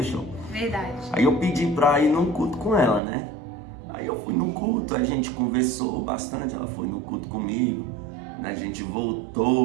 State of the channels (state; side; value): drops out; left; at 3.0 s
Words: Verdade. Aí eu pedi para ir num culto com ela, né? Aí eu fui no culto, a gente conversou bastante, ela foi no culto comigo. A gente